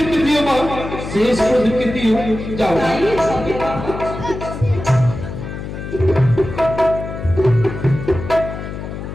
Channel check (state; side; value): noise; left; hum, 8 dB below the sound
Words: দিও মা, শেষ প্রতিজ্ঞা দিও। যাও মা। তাই হবে বাবা।